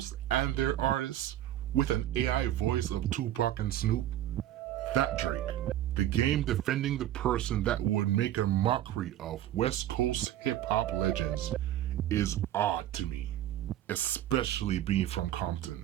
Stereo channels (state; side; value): quieter; left; 12.7 dB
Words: and their artists with an AI voice of Tupac and Snoop. That Drake, the game defending the person that would make a mockery of West Coast hip-hop legends, is odd to me, especially being from